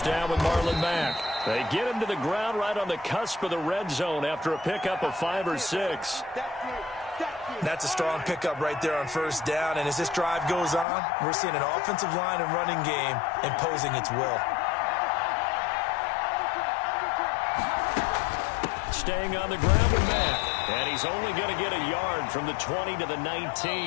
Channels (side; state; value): right; drops out; at 10.9 s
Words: down with Marlon Mack. They get him to the ground right on the cusp of the red zone after a pickup of 5 or 6. That's a strong pickup right there on first down, and as this drive goes on, we're seeing an offensive line and running game imposing its will. Staying on the ground with Mack, and he's only going to get a yard from the 20 to the